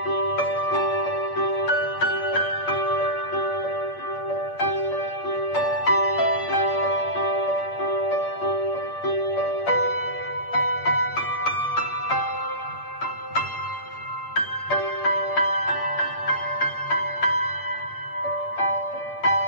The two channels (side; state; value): right; late; 8.6 ms